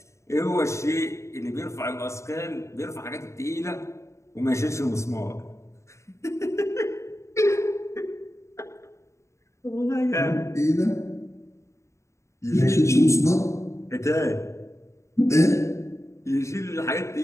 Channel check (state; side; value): late; right; 0.14 ms